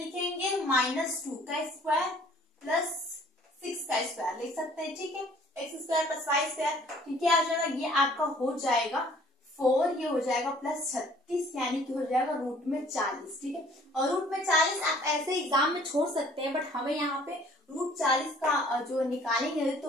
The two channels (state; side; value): normal; both; correlation 0.55